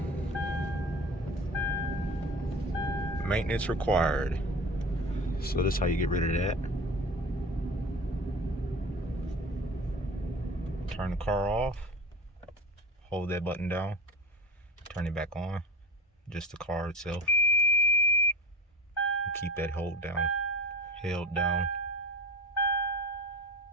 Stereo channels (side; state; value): both; normal; correlation 0.33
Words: Maintenance required. So that's how you get rid of that. Turn the car off. Hold that button down. Turn it back on. Just the car itself. Keep that held down.